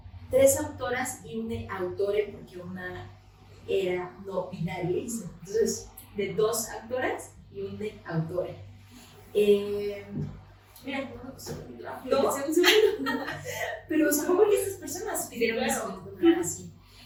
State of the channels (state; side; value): identical; both; correlation 1.00